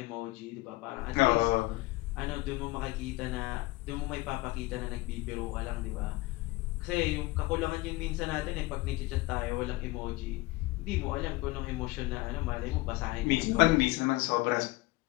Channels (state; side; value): quieter; right; 20.7 dB